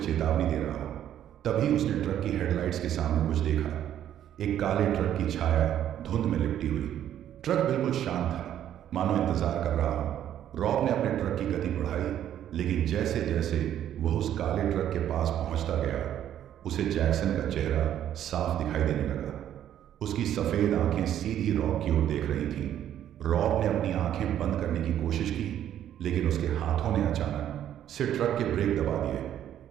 चेतावनी दे रहा हो। तभी उसने ट्रक की हेडलाइट्स के सामने कुछ देखा। एक काले ट्रक की छाया धुंध में लिपटी हुई। ट्रक बिल्कुल शांत था, मानो इंतजार कर रहा हो। रॉब ने अपने ट्रक की गति बढ़ाई, लेकिन जैसे जैसे वह उस काले ट्रक के पास पहुंचता गया, उसे जैक्सन का चेहरा साफ दिखाई देने लगा। उसकी सफेद आंखें सीधी रॉब की ओर देख रही थीं। रॉब ने अपनी आंखें बंद करने की कोशिश की, लेकिन उसके हाथों ने अचानक से ट्रक के ब्रेक दबा दिए।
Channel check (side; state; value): left; quieter; 10.9 dB